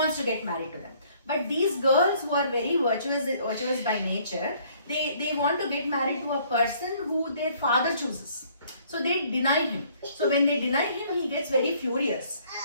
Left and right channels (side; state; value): both; inverted; correlation -0.61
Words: to get married to them. But these girls who are very virtuous by nature, they want to get married to a person who their father chooses. So they deny him. So when they deny him, he gets very furious,